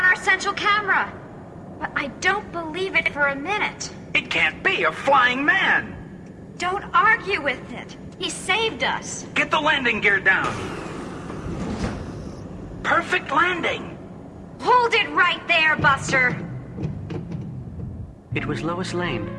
our central camera. But I don't believe it for a minute. It can't be a flying man! Don't argue with it. He saved us. Get the landing gear down. Perfect landing. Hold it right there, Buster. It was Lois Lane.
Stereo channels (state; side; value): identical; both; correlation 1.00